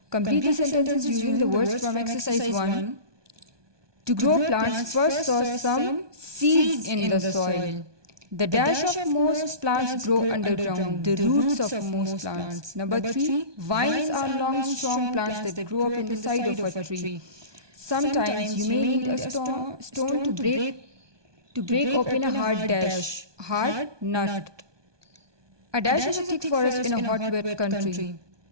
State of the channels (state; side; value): late; left; 1.2 ms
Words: Complete the sentences using the words from exercise 1. To grow plants, first sow some seeds in the soil. The dash of most plants grow underground, the roots of most plants. Number 3, vines are long, strong plants that grow up in the side of a tree. Sometimes you may need a stone to break open a hard nut. A dash is a thick forest in a hot, wet country.